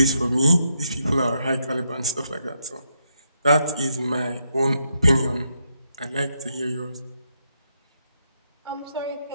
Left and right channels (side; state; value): both; inverted; correlation -0.79